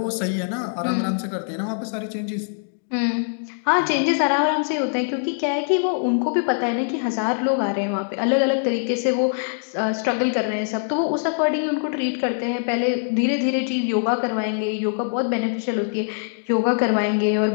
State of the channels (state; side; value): silent; right; digital silence